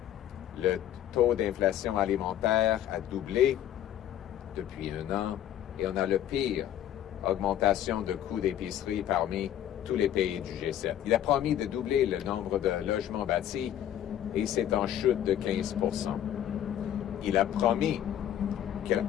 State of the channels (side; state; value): right; quieter; 11.2 dB